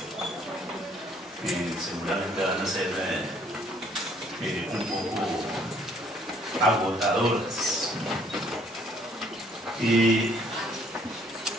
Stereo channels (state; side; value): normal; both; correlation 0.62